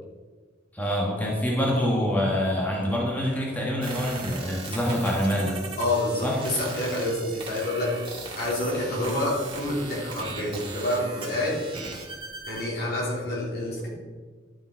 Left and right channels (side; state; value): both; normal; correlation 0.45